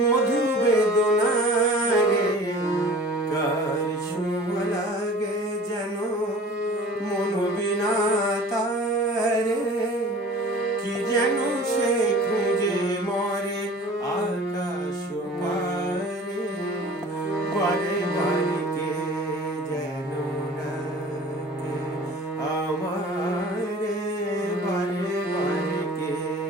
বেদনারে, কার ছোঁয়া লাগে যেন মনোবিনা তারে, কি যেন সে খুঁজে মরে আকাশ পারে, বারে বারে কে যেন ডাকে আমারে, বারে বারে কে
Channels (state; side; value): normal; both; correlation 0.44